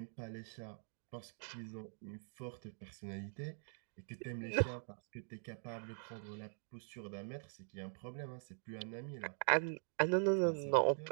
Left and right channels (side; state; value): left; silent; digital silence